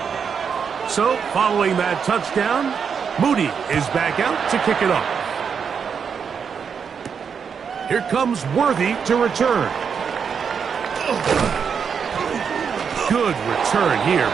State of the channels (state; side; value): quieter; left; 6.6 dB